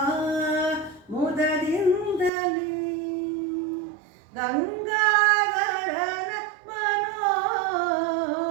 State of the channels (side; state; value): left; drops out; at 2.3 s